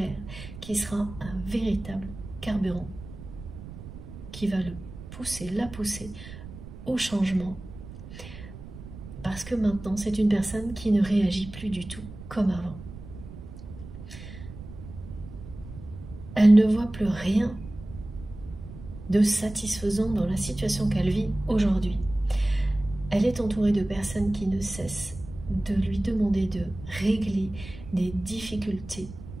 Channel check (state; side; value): noise; right; rumble, 14 dB below the sound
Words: qui sera un véritable carburant qui va le pousser, la pousser au changement, parce que maintenant c'est une personne qui ne réagit plus du tout comme avant. Elle ne voit plus rien de satisfaisant dans la situation qu'elle vit aujourd'hui. Elle est entourée de personnes qui ne cessent de lui demander de régler des difficultés,